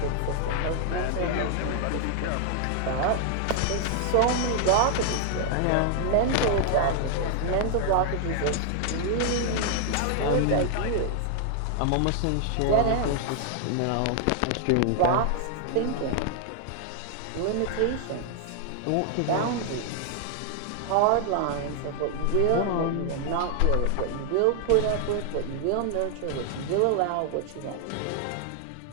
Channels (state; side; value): different; both; correlation 0.00